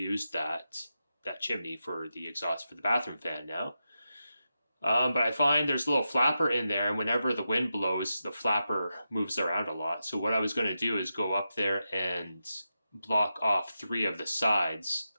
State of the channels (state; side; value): inverted; both; correlation -0.89